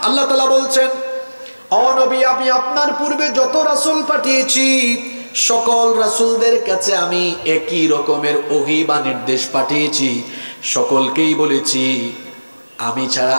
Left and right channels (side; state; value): both; inverted; correlation -1.00